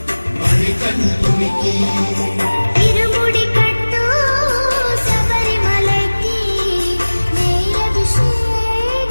మణికంఠునికి ఇరుముడి కట్టు శబరిమలకి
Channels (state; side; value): inverted; both; correlation -1.00